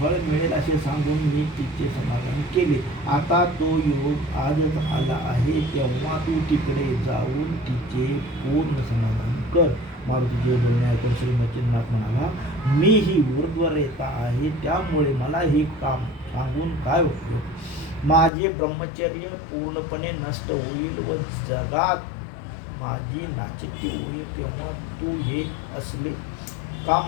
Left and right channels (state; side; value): drops out; right; at 18.3 s